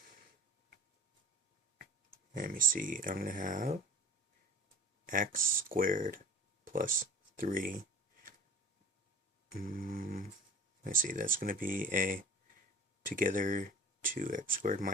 Let me see, I'm gonna have x squared plus 3. Let's see, that's gonna be a together 2x squared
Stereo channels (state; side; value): normal; both; correlation 0.42